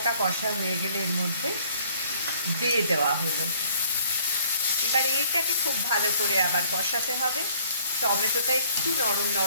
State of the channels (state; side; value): inverted; both; correlation -0.57